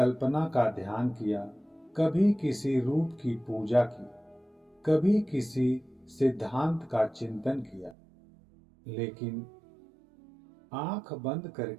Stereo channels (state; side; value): drops out; left; at 8.0 s